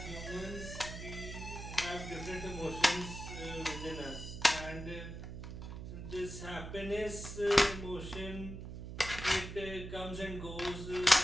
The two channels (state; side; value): noise; right; hum, 9 dB below the sound